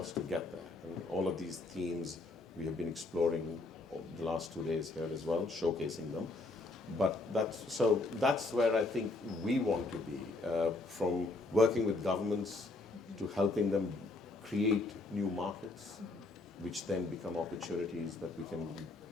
to get there. And all of these themes we have been exploring the last 2 days here as well, showcasing them. But that's where I think we want to be, from working with governments to helping them create new markets, which then become opportunities that we can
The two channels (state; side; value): quieter; right; 3.1 dB